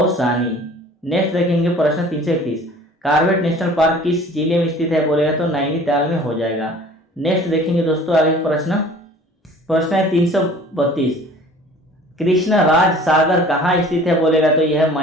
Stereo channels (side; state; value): both; normal; correlation 0.48